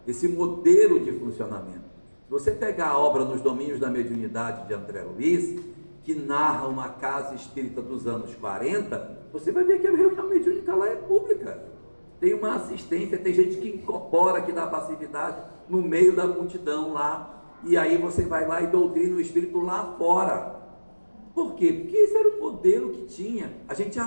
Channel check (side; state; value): both; inverted; correlation -1.00